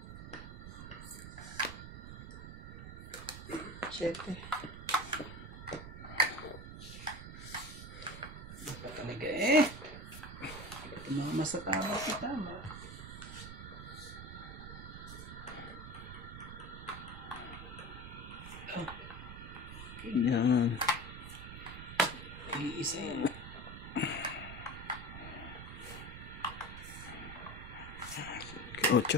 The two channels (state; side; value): noise; right; rumble, 10 dB below the sound